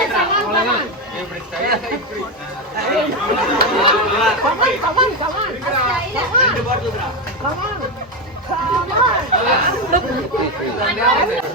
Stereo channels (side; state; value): both; normal; correlation 0.10